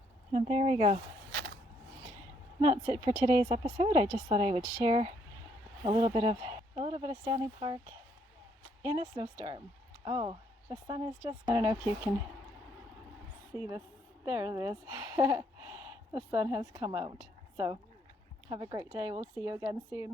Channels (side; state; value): both; normal; correlation 0.70